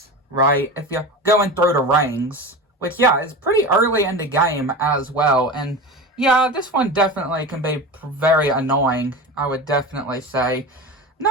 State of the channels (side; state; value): both; normal; correlation 0.28